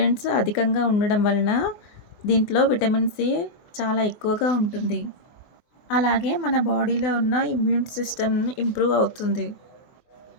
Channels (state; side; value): late; right; 24 ms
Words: అధికంగా ఉండడం వలన దీంట్లో విటమిన్ సి చాలా ఎక్కువగా ఉంటుంది. అలాగే మన బాడీలో ఉన్న ఇమ్యూన్ సిస్టమ్ ఇంప్రూవ్ అవుతుంది.